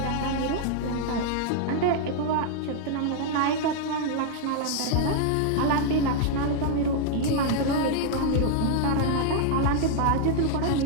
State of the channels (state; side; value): different; both; correlation 0.00